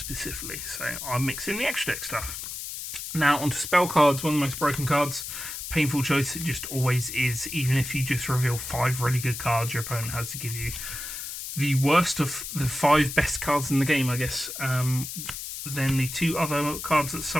so I mix in the extra deck stuff. Now, onto spell cards, one of the most broken cards. Painful choice, it just always is. Even if you just reveal 5 really good cards, your opponent has to give you the worst of the 5 best cards in the game, I guess. Then the 2 other cards that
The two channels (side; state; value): left; noise; hiss, 7 dB below the sound